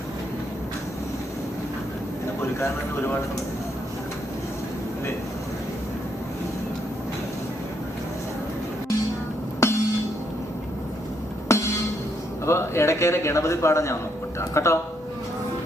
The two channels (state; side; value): normal; both; correlation 0.75